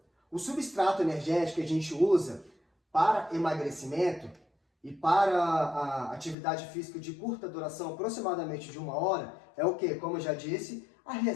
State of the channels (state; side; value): drops out; right; at 6.4 s